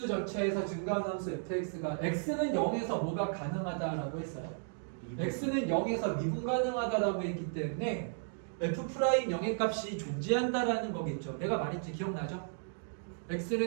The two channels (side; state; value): left; silent; digital silence